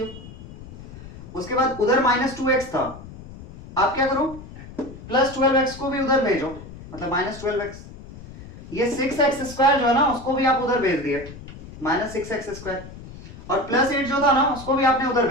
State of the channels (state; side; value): noise; left; rumble, 15 dB below the sound